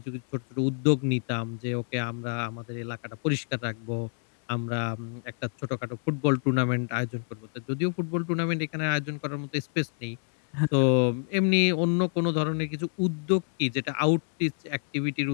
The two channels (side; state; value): right; silent; digital silence